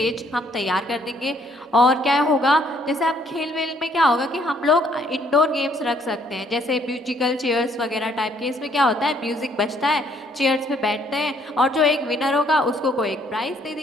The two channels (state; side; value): normal; both; correlation 0.66